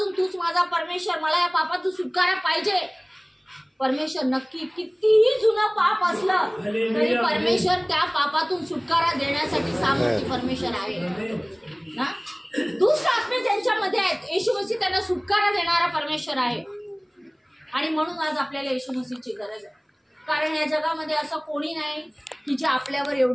तूच माझा परमेश्वर, मला या पापातून सुटकारा पाहिजे, परमेश्वर नक्की कितीही जुनं पाप असलं तरी परमेश्वर त्या पापातून सुटकारा देण्यासाठी सामर्थ्य परमेश्वर आहे ना. दुष्ट आत्मे त्यांच्यामध्ये आहेत, येशू मसीह त्यांना सुटकारा देणारा परमेश्वर आहे. आणि म्हणून आज आपल्याला येशू मसीहची गरज आहे. कारण या जगामध्ये असं कोणी नाही की जे आपल्यावर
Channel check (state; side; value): identical; both; correlation 1.00